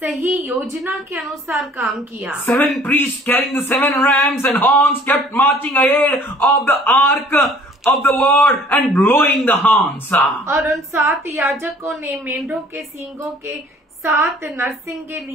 योजना के अनुसार काम किया। 7 priests carrying the 7 rams and horns kept marching ahead of the ark of the Lord and blowing the horns. और उन 7 याजकों ने मेंढों के सींगों के 7 नरसिंगे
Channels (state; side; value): normal; both; correlation 0.54